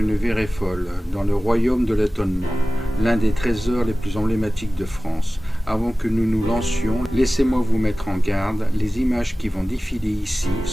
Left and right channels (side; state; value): both; normal; correlation 0.97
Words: virée folle, dans le royaume de l'étonnement, l'un des trésors les plus emblématiques de France. Avant que nous nous lancions, laissez-moi vous mettre en garde, les images qui vont défiler ici